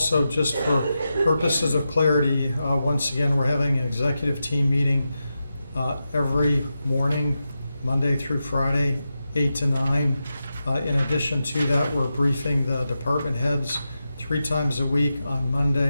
just for purposes of clarity, once again, we're having an executive team meeting every morning, Monday through Friday, 8 to 9. In addition to that, we're briefing the department heads 3 times a week on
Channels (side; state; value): both; inverted; correlation -0.90